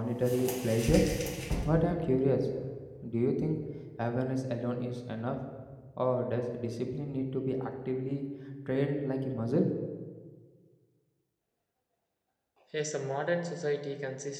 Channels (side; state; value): both; identical; correlation 1.00